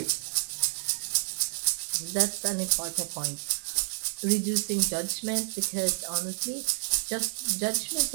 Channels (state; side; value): silent; left; digital silence